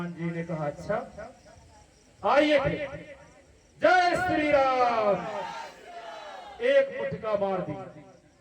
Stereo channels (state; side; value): identical; both; correlation 1.00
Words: जी ने कहा, अच्छा आइए फिर। जय श्री राम। एक मुठका मार दी।